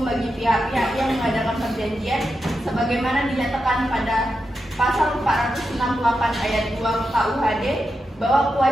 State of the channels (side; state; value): both; normal; correlation 0.87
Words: bagi pihak-pihak yang mengadakan perjanjian sebagaimana dinyatakan pada Pasal 468 ayat 2 KUHD bahwa